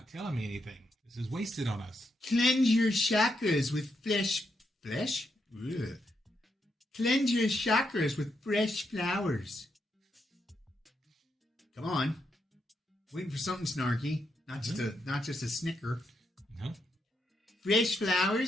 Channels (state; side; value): normal; both; correlation 0.81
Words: telling me anything. This is wasted on us. Cleanse your chakras with flesh? Ugh. Cleanse your chakras with fresh flowers. Come on. Waiting for something snarky. Not just a snicker. No. Fresh